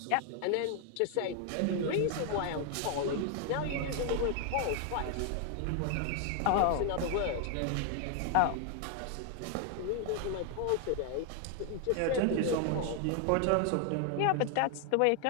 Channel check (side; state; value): both; different; correlation 0.00